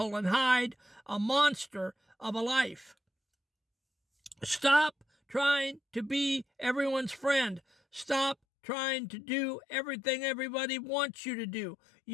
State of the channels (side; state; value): right; drops out; at 8.3 s